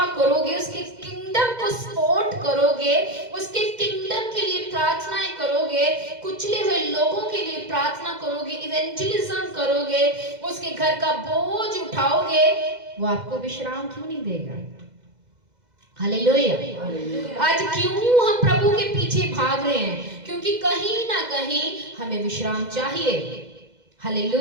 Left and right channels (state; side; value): late; left; 2.0 ms